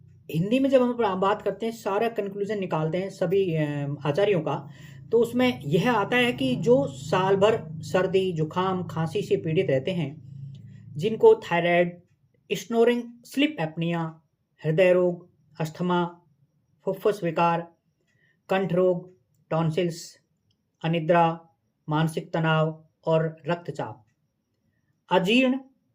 हिंदी में जब हम बात करते हैं, सारा कंक्लूजन निकालते हैं सभी आचार्यों का, तो उसमें यह आता है कि जो साल भर सर्दी जुकाम खांसी से पीड़ित रहते हैं, जिनको थायराइड, स्नोरिंग, स्लीप एपनिया, हृदय रोग, अस्थमा, फुफ्फुस विकार, कंठ रोग, टॉन्सिल्स, अनिद्रा, मानसिक तनाव और रक्तचाप, अजीर्ण,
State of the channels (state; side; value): identical; both; correlation 1.00